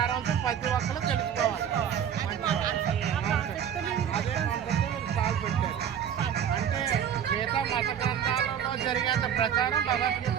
ప్రతి ఒక్కరు తెలుసుకోవాలి. అదే మనతో కాల్ పెట్టారు. అంటే గీత మత గ్రంథాలలో జరిగేంత ప్రచారం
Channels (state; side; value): quieter; left; 8.9 dB